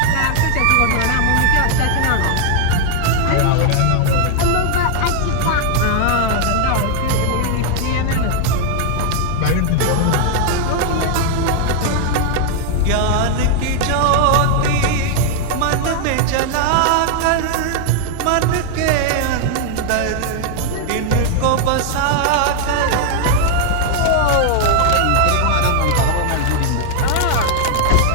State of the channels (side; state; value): both; different; correlation 0.00